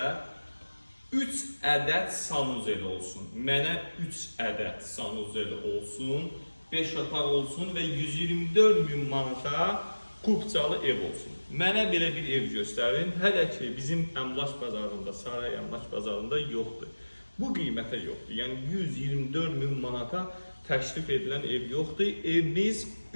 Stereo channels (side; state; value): both; inverted; correlation -1.00